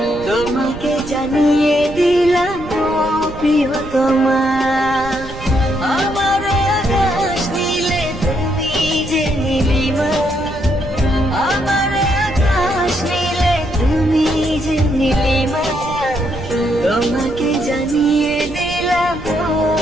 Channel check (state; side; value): noise; right; rumble, 13 dB below the sound